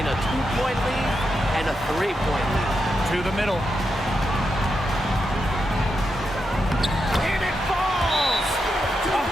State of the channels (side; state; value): both; normal; correlation 0.85